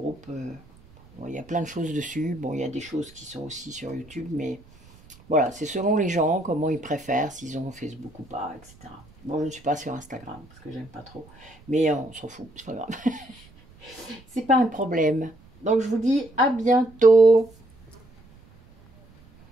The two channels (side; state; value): right; noise; rumble, 26 dB below the sound